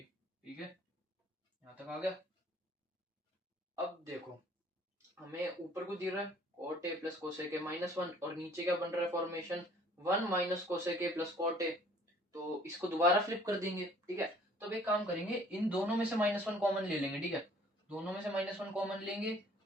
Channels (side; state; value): both; normal; correlation 0.56